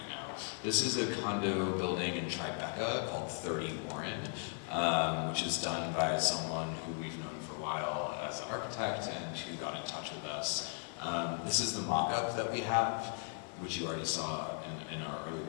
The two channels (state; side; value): silent; right; 53 dB below the other